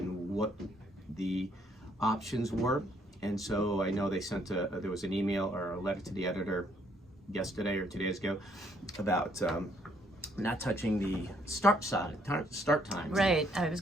what the options were. And so I know they sent there was an email or a letter to the editor yesterday or 2 days ago about not touching the start time. Right. I was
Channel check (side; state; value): both; normal; correlation 0.68